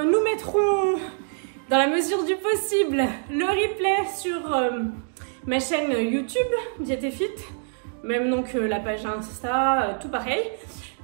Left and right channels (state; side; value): silent; left; digital silence